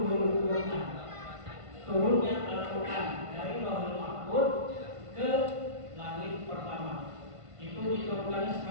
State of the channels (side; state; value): left; late; 1.5 ms